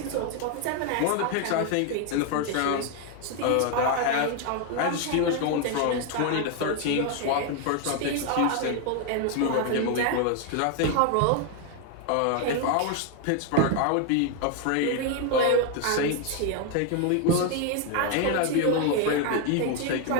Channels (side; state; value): both; different; correlation 0.01